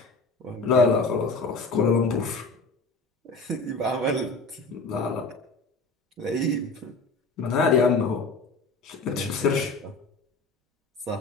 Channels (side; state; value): right; quieter; 3.4 dB